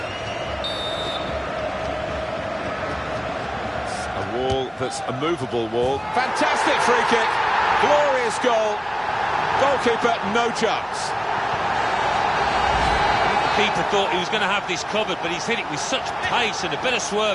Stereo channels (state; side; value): identical; both; correlation 1.00